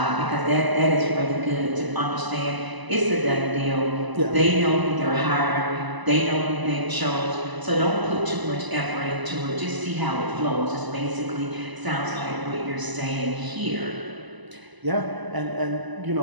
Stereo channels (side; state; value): left; late; 1.0 ms